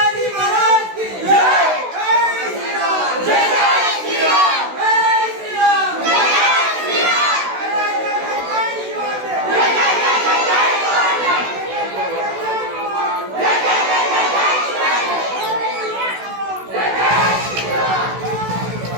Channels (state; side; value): late; left; 16 ms